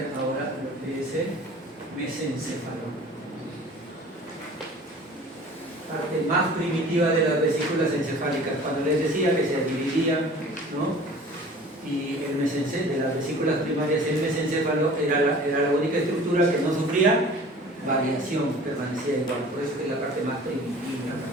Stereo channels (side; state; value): both; normal; correlation 0.45